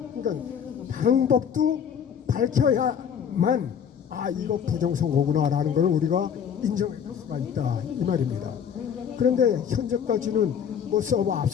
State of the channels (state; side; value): quieter; right; 7.9 dB